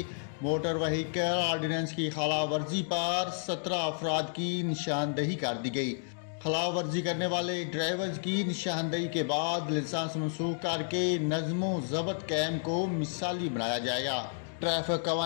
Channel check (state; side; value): silent; right; digital silence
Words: मोटर व्हीकल ऑर्डिनेंस की खिलाफ वर्जी पर 17 अफराद की निशानदेही कर दी गई। खिलाफ वर्जी करने वाले ड्राइवर्स की निशानदेही के बाद लाइसेंस मनसूख करके नज़्मो ज़ब्त कैम को मिसाली बनाया जाएगा। ट्रैफिक